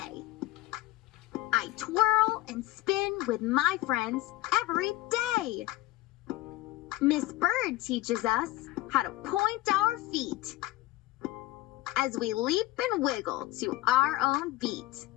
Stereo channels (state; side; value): quieter; right; 17.6 dB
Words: I twirl and spin with my friends every day. Miss Bird teaches us how to point our feet as we leap and wiggle to our own beat.